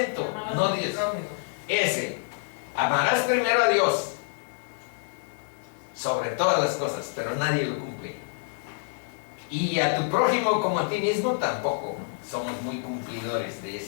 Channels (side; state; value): right; silent; digital silence